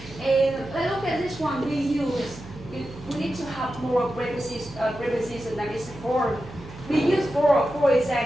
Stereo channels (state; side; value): noise; right; hum, 15 dB below the sound